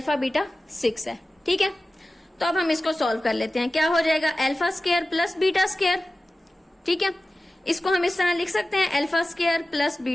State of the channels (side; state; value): both; normal; correlation 0.96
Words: बीटा 6 है। ठीक है, तो अब हम इसको सॉल्व कर लेते हैं। क्या हो जाएगा, alpha square plus beta square ठीक है, इसको हम इस तरह लिख सकते हैं alpha square plus